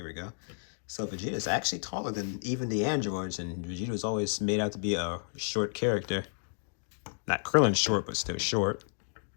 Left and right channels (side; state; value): right; silent; digital silence